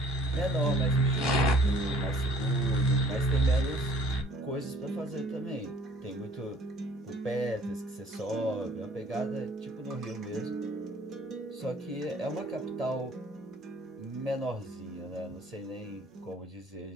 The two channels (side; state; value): both; normal; correlation 0.55